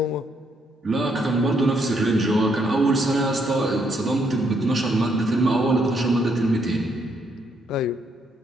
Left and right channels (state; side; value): normal; both; correlation 0.73